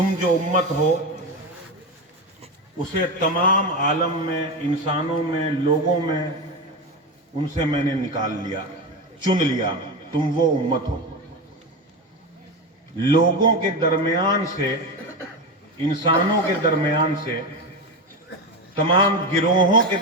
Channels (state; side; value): normal; both; correlation 0.17